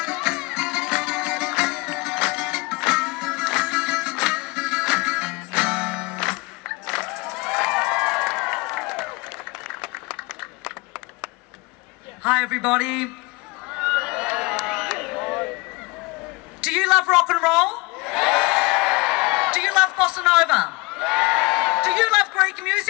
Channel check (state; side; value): quieter; right; 24.8 dB